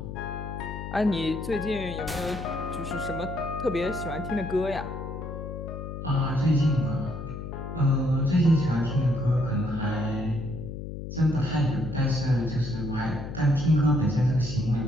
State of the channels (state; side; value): noise; left; hum, 8 dB below the sound